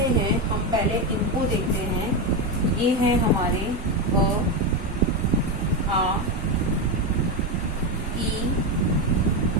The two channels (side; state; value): both; normal; correlation 0.11